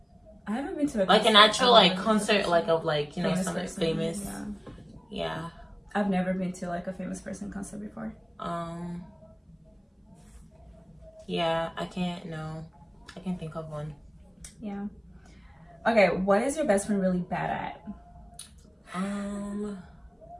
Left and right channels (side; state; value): both; identical; correlation 1.00